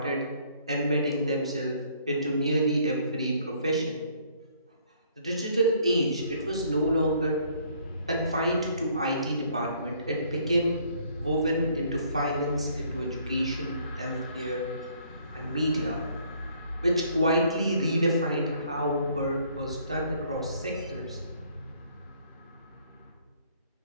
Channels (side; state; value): both; inverted; correlation -0.63